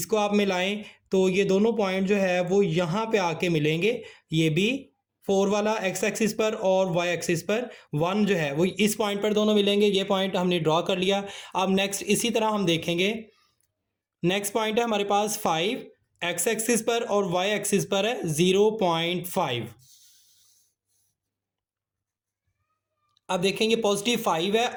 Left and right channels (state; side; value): identical; both; correlation 1.00